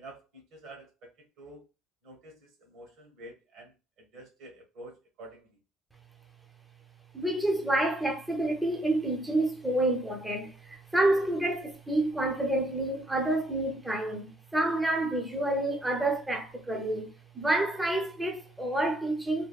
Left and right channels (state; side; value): normal; both; correlation 0.71